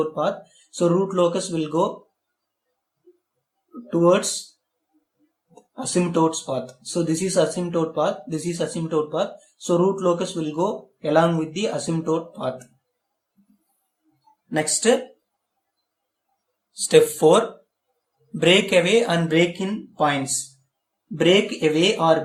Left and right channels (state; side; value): identical; both; correlation 1.00